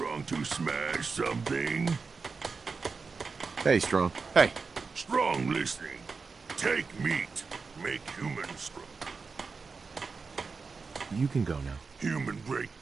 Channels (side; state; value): left; quieter; 4.7 dB